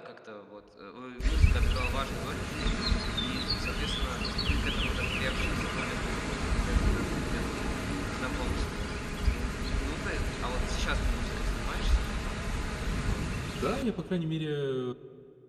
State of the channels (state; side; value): identical; both; correlation 1.00